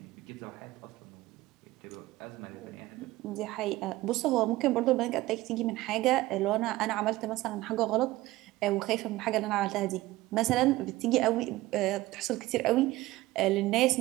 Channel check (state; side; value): quieter; left; 17.9 dB